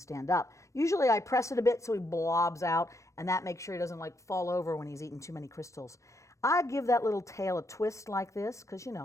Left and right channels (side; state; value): right; late; 0.15 ms